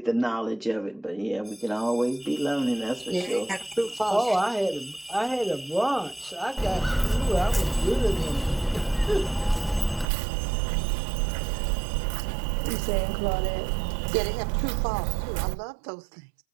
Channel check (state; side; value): drops out; left; at 10.1 s